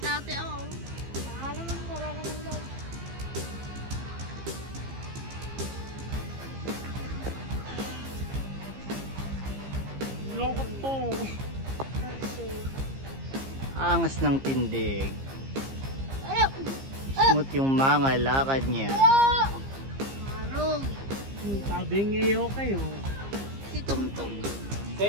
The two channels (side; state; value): left; late; 15 ms